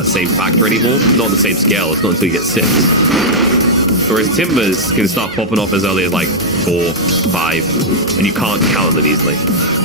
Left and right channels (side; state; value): both; normal; correlation -0.06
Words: same factor anymore. Not on the same scale. It's not until you get 6. Whereas Timbers can start popping off as early as, like, 4, 5. And you can't count them easily.